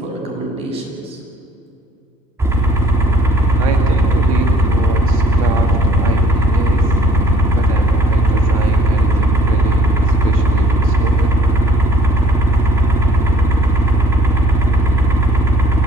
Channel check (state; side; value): normal; both; correlation 0.56